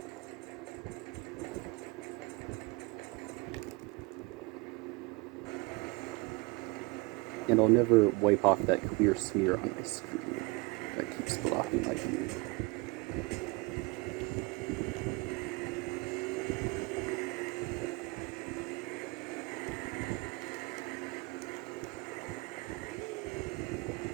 And I'll never wipe off that clear smear on my screen that keeps blocking my view.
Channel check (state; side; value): quieter; left; 26.4 dB